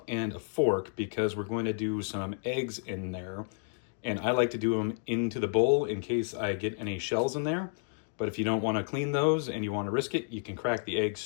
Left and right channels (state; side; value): silent; right; digital silence